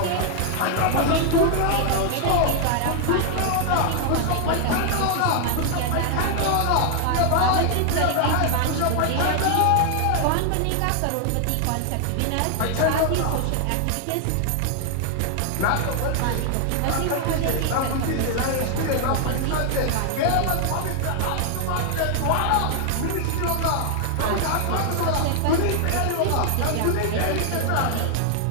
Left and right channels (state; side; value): different; both; correlation 0.00